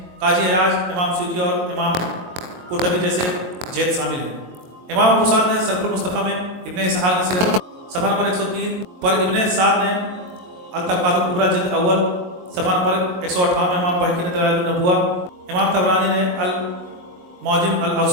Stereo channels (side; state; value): left; late; 22 ms